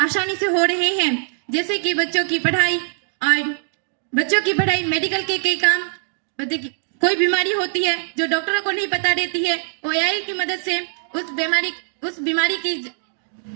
आसानी से हो रहे हैं, जैसे कि बच्चों की पढ़ाई, मेडिकल के कई काम। कोई बीमारी होती है जो डॉक्टरों को नहीं पता रहती है, वो एआई की मदद से उस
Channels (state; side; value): silent; left; digital silence